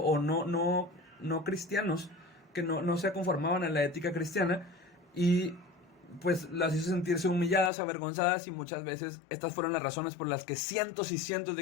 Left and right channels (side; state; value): right; drops out; at 7.7 s